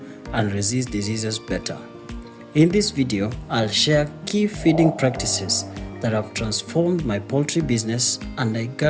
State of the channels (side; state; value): both; identical; correlation 1.00